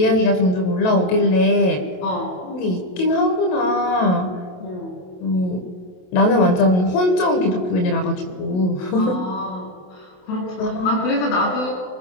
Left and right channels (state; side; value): late; right; 27 ms